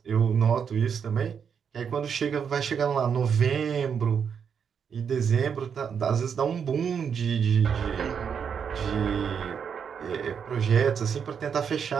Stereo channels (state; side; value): quieter; left; 7.1 dB